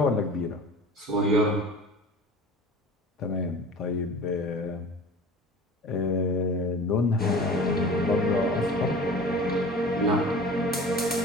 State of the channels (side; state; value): both; normal; correlation 0.40